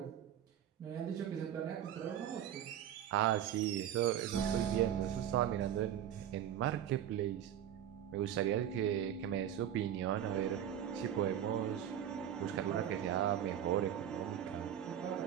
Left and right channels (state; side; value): quieter; left; 10.2 dB